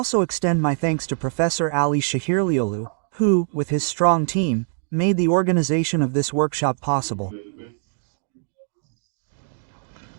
extend my thanks to Professor Ali Shahirliolu, who, with his strong team, made the organization of this workshop possible.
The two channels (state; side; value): silent; left; digital silence